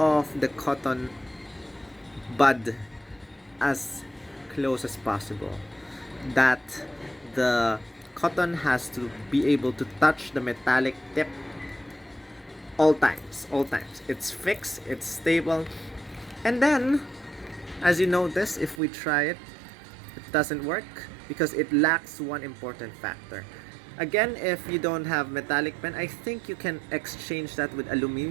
the cotton bud as close as possible, that the cotton has to be able to touch the metallic tip all times. It's fixed, it's stable. And then, as you notice, if we try it, it doesn't work because it lacks one important factor. Again, if you don't have metallic pen, I think you can exchange that with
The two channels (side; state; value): left; drops out; at 18.8 s